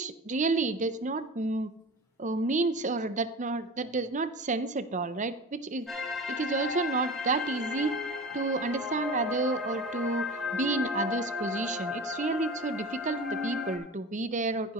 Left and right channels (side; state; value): both; normal; correlation 0.33